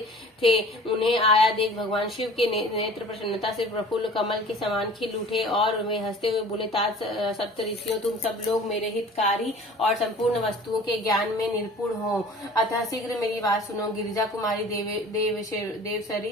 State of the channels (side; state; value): both; normal; correlation 0.45